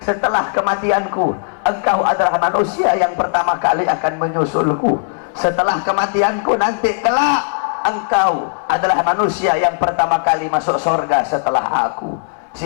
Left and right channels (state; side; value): silent; right; digital silence